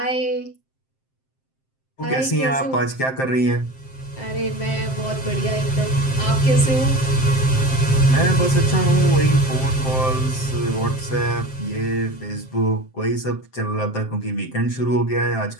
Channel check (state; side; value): late; right; 7.6 ms